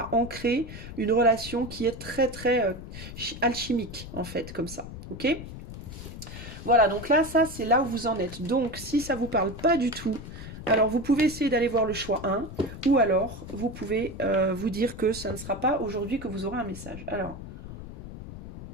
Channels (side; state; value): left; noise; rumble, 12 dB below the sound